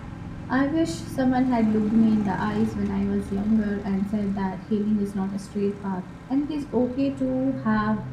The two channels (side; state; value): both; identical; correlation 1.00